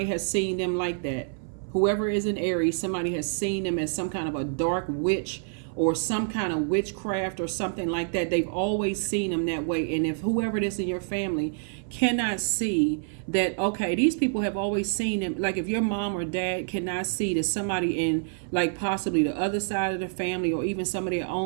has seen them like that. Whoever is in Aries, somebody has seen them as some kind of a dark witch or some kind of witchcraft or something like that. They've always seen them that way. And if whoever it is in your family cannot see that, okay, these people have always seen them, like if your mom or dad cannot see that somebody in like possibly the other side of the family or even some of their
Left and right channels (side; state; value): left; silent; 57 dB below the other